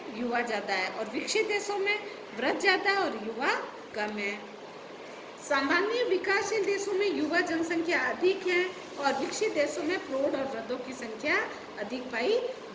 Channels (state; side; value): identical; both; correlation 1.00